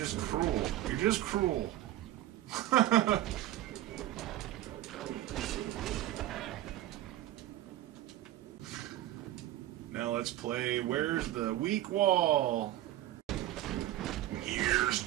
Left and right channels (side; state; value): left; quieter; 14.2 dB